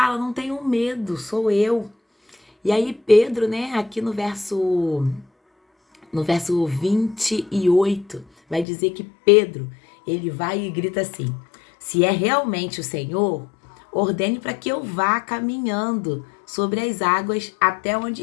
não tenham medo, sou eu. E aí Pedro, né, aqui no verso 28, vai dizer que Pedro, ele vai e grita assim: se é realmente o Senhor, ordene para que eu vá caminhando sobre as águas até onde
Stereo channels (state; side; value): drops out; right; at 8.7 s